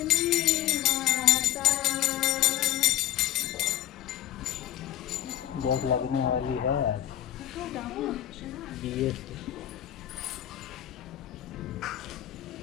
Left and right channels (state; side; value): quieter; right; 12.6 dB